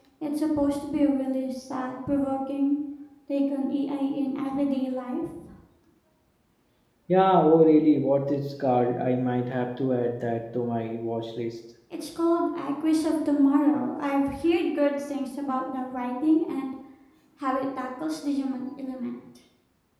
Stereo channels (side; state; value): both; identical; correlation 1.00